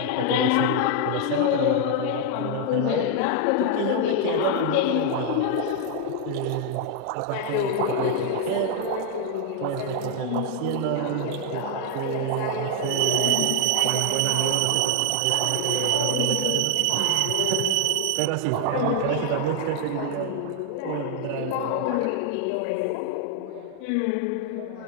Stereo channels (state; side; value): different; both; correlation 0.00